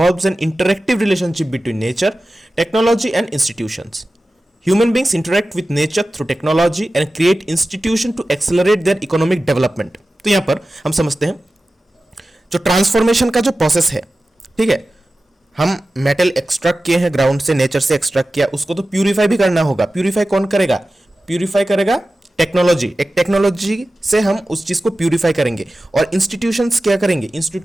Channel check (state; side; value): normal; both; correlation 0.95